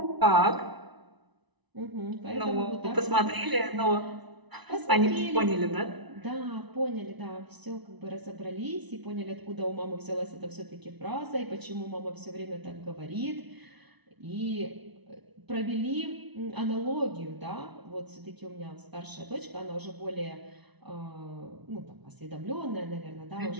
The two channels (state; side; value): late; left; 1.0 ms